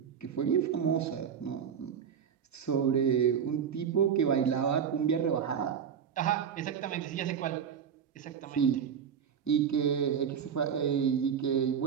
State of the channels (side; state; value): left; quieter; 7.7 dB